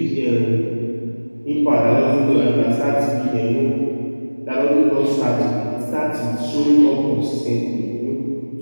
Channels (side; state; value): both; inverted; correlation -1.00